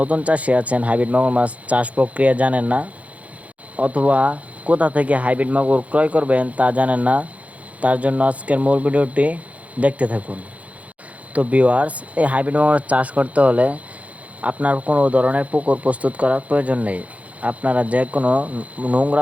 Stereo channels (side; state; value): left; late; 0.067 ms